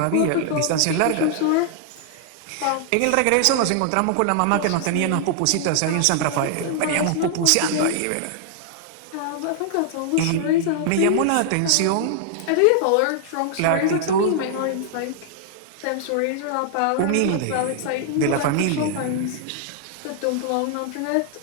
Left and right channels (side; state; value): both; different; correlation 0.00